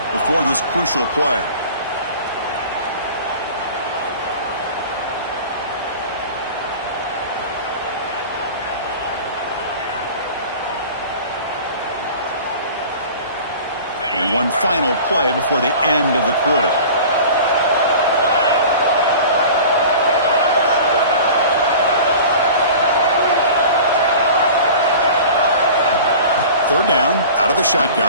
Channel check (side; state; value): both; inverted; correlation -0.40